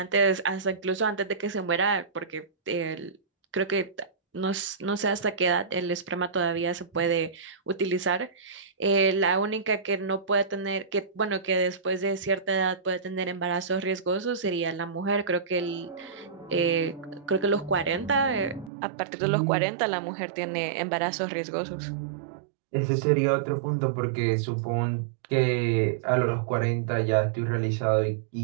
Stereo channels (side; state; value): left; drops out; at 18.7 s